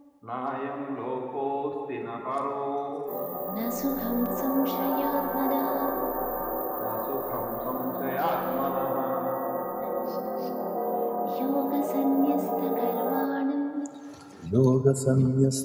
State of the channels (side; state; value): both; identical; correlation 1.00